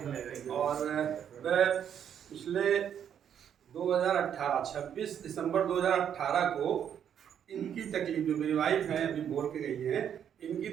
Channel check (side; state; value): left; quieter; 8.9 dB